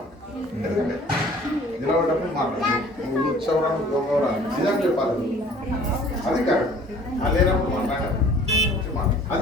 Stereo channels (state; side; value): normal; both; correlation 0.51